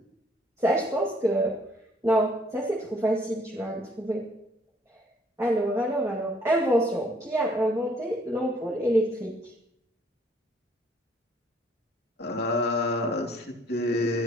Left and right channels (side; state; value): both; normal; correlation 0.62